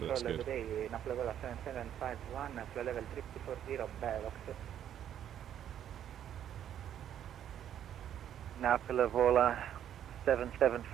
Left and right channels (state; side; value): quieter; left; 10.2 dB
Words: that's good. Napoli